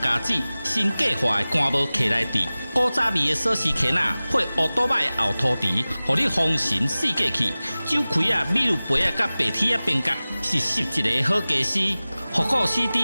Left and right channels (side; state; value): both; inverted; correlation -0.98